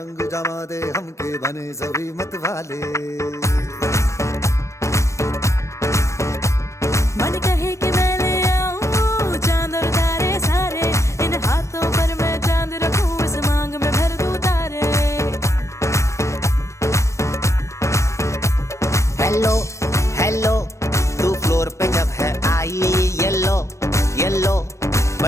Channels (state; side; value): late; right; 0.14 ms